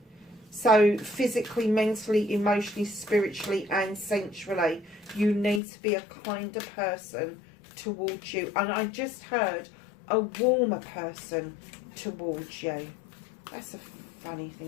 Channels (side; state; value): right; drops out; at 5.6 s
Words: So physically, mentally, emotionally, spiritually and sensually, you need to be a kinder person towards you. And I just heard a warmer person towards you. That's a funny